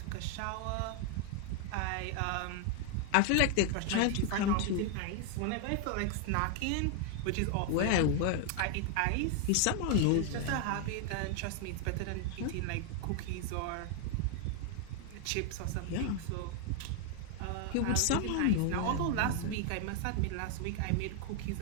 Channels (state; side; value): different; both; correlation 0.00